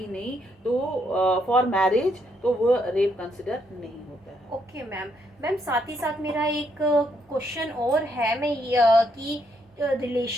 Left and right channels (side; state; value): both; normal; correlation 0.75